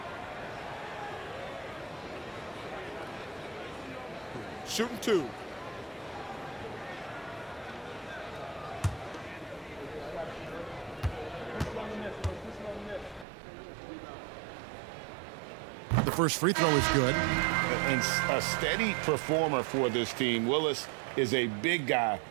Shooting 2. The first free throw is good. And a steady performer for this team. Willis is a big guy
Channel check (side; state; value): left; drops out; at 13.2 s